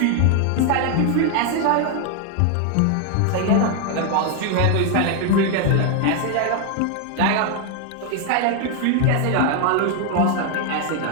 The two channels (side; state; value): both; different; correlation 0.00